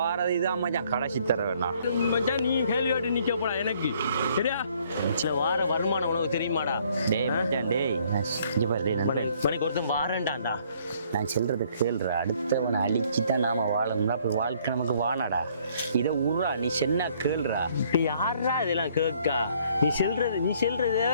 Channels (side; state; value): both; inverted; correlation -0.63